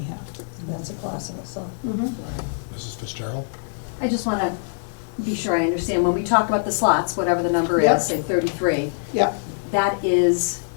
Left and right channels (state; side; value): silent; right; 63 dB below the other